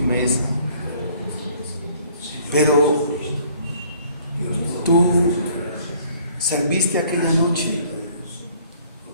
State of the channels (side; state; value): both; inverted; correlation -0.58